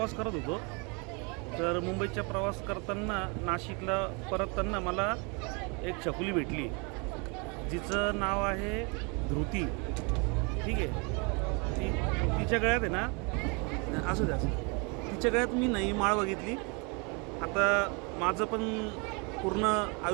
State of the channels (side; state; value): left; quieter; 31.9 dB